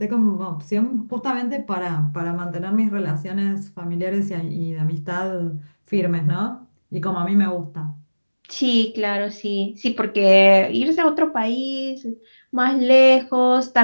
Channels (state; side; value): inverted; both; correlation -1.00